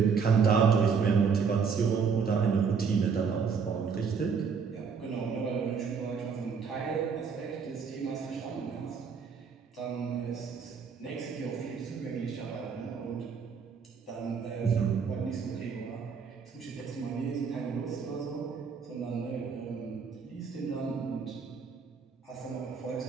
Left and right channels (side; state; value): left; quieter; 5.9 dB